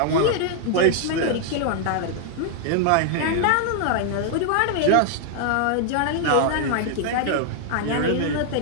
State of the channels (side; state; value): both; different; correlation 0.00